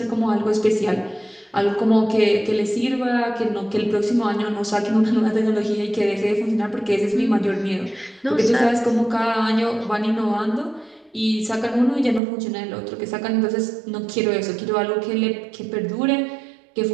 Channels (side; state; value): left; drops out; at 12.2 s